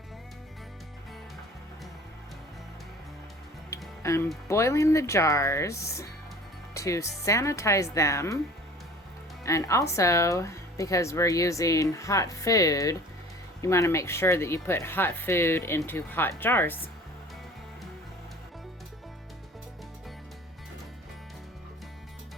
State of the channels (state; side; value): normal; both; correlation 0.45